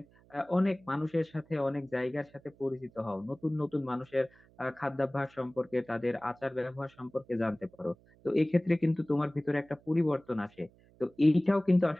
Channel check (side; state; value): right; noise; hum, 29 dB below the sound